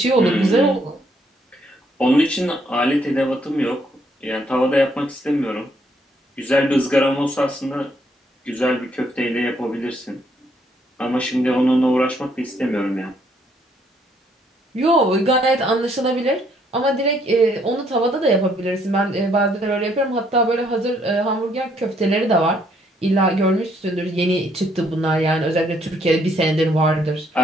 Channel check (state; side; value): normal; both; correlation 0.69